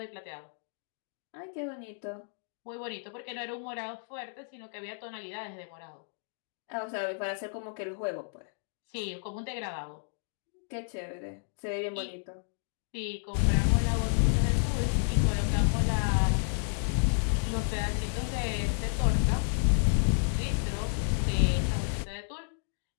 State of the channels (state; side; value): silent; right; digital silence